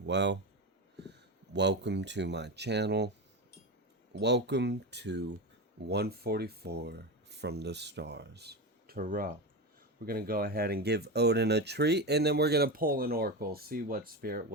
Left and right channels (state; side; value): normal; both; correlation 0.19